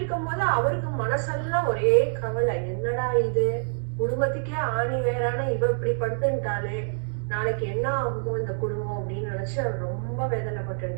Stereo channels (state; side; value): silent; left; digital silence